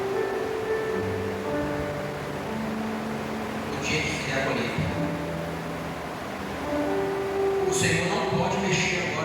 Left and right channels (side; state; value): both; identical; correlation 1.00